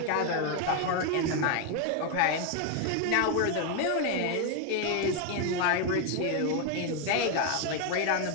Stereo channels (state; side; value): different; both; correlation 0.01